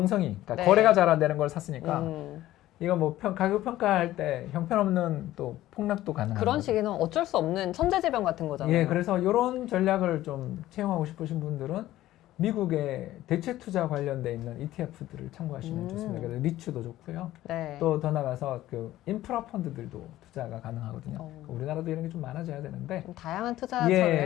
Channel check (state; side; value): quieter; right; 14.8 dB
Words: 그러니까 네. 거래가 잘 안 되는 걸 샀으니까 음. 이거 뭐 가격 평가할 때 형편없는 또 폭락도 가능한 그런 거죠. 시기는 어쩔 수 없는 천재지변 같은 거잖아요. 예, 그래서 이런 전략을 좀 채용하고 싶으신 분들은 미국의 대체 투자 관련돼 있는 ETF들을 참고하시면 좋습니다. 그래서 리츠도 좋고요. 네. 또 더 나가서 그 인프라 펀드들도 투자가 가능하거든요. 어. 우리나라도 이런 게 좀 많아져야 되는데 좀 다양한 투자처를 예,